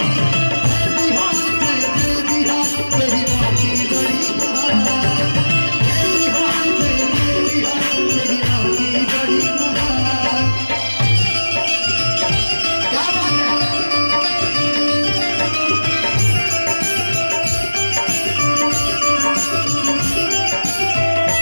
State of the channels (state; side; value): inverted; both; correlation -1.00